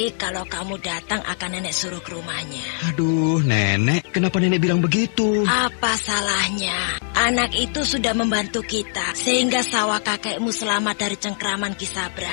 kalau kamu datang akan nenek suruh ke rumahnya. Aduh, nenek, kenapa nenek bilang begitu? Apa salahnya? Anak itu sudah membantu kita, sehingga sawah kakekmu selamat dari cengkraman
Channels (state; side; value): silent; right; digital silence